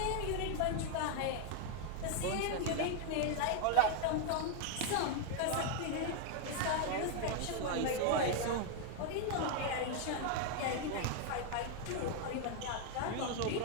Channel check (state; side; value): different; both; correlation 0.00